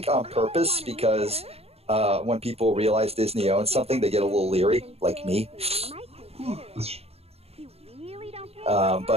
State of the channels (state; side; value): late; left; 0.29 ms